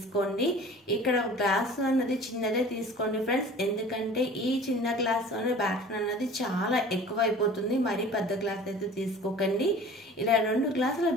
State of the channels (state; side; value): normal; both; correlation 0.43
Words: ఇక్కడ గ్లాస్ అన్నది చిన్నదే తీసుకోండి ఫ్రెండ్స్, ఎందుకంటే ఈ చిన్న గ్లాస్ బ్యాటర్ అన్నది చాలా ఎక్కువ అయిపోతుంది. మరీ పెద్ద గ్లాస్ అయితే తీసుకోకండి. ఇలా 2 గ్లాసుల